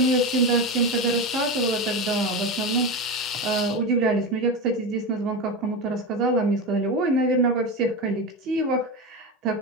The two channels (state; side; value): normal; both; correlation 0.19